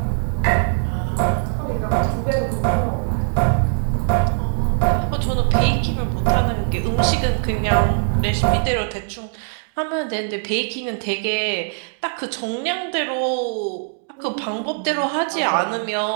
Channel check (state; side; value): silent; left; digital silence